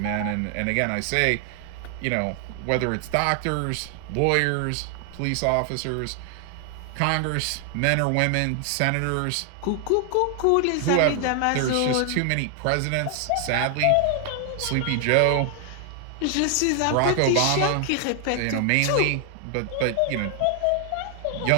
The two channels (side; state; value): both; different; correlation 0.00